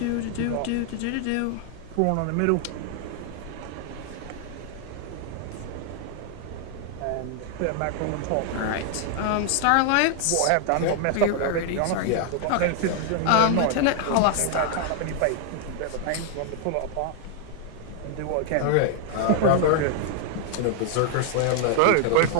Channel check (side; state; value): both; different; correlation 0.00